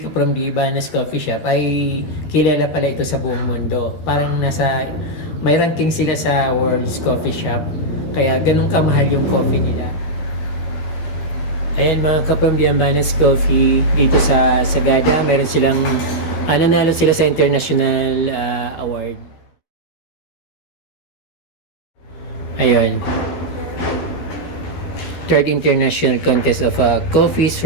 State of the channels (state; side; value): late; right; 13 ms